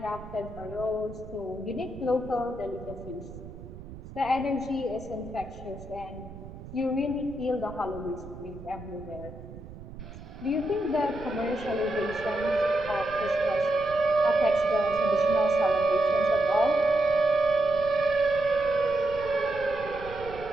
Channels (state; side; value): noise; right; rumble, 14 dB below the sound